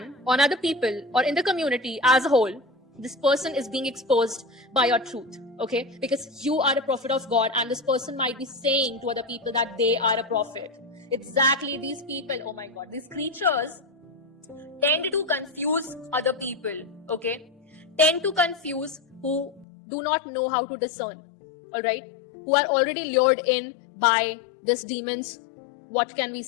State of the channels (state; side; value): drops out; right; at 19.7 s